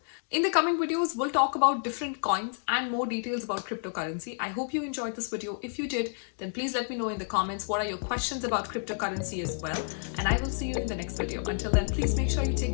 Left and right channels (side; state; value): right; silent; digital silence